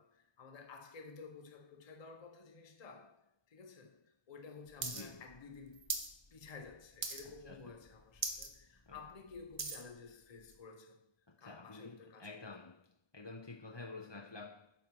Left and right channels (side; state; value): right; late; 1.2 ms